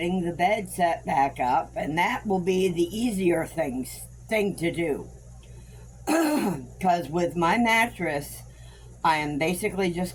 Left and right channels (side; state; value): both; identical; correlation 1.00